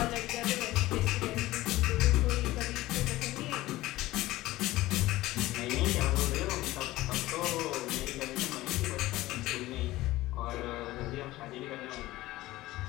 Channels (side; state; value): right; quieter; 17.4 dB